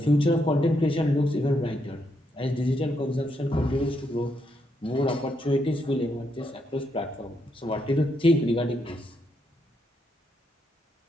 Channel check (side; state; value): both; normal; correlation 0.79